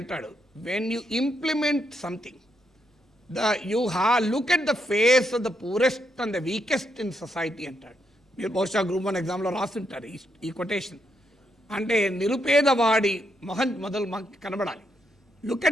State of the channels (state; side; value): normal; both; correlation 0.79